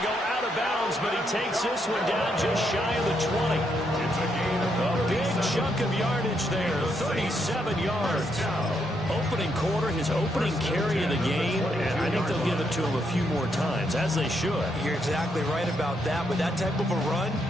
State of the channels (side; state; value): both; normal; correlation 0.77